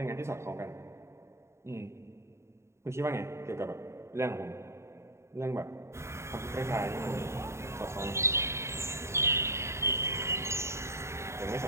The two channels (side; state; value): left; late; 0.13 ms